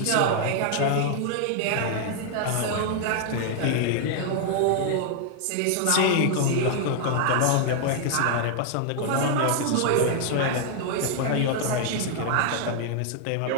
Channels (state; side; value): different; both; correlation 0.00